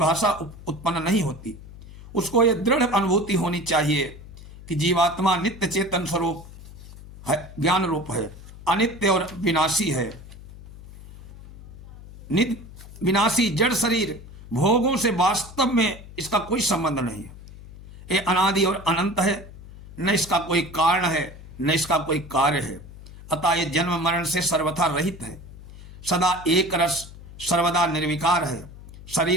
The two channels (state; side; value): noise; left; hum, 17 dB below the sound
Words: उत्पन्न नहीं होती। उसको यह दृढ़ अनुभूति होनी चाहिए कि जीवात्मा नित्य चेतन स्वरूप है, ज्ञान रूप है, अनित्य और विनाशी है। नित्य विनाशी जड़ शरीर भोगों से वास्तव में इसका कोई संबंध नहीं है। ये अनादि और अनंत है, न इसका कोई कारण है न इसका कोई कार्य है। अतः ये जन्म मरण से सर्वथा रहित है, सदा एक रस, सर्वदा निर्विकार है।